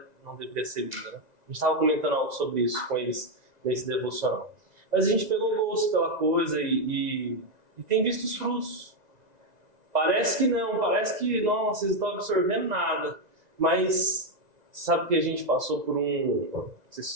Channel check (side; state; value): left; late; 2.0 ms